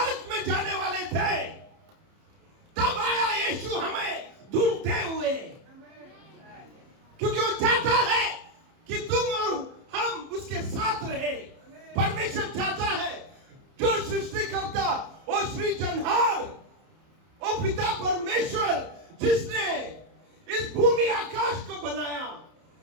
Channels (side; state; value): left; late; 30 ms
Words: में जाने वाले थे, तब आया यीशु हमें ढूंढते हुए, क्योंकि वो चाहता है कि तुम और हम उसके साथ रहे। परमेश्वर चाहता है, जो सृष्टि करता वो सृजनहार, वो पिता परमेश्वर जिसने इस भूमि आकाश को बनाया,